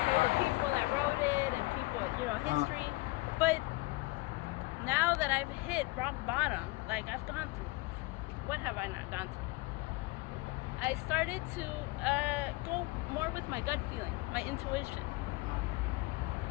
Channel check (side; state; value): right; quieter; 23.3 dB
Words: hear the people that wrote it and people, history. But now that I've hit rock bottom, like I've gone through. What have I not gone through? I started to go more with my gut feeling, my intuition.